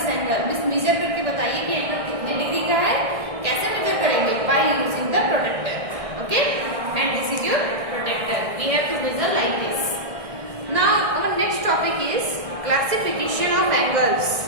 angle. measure करके बताइए कि एंगल कितने डिग्री का है, कैसे मेजर करेंगे? By using the protector. Okay? And this is your protector. We have to measure like this. Now our next topic is classification of angles.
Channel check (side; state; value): left; late; 1.6 ms